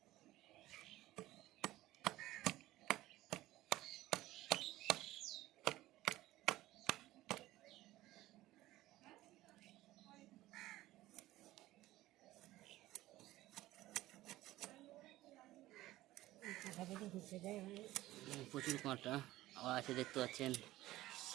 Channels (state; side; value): quieter; left; 16.4 dB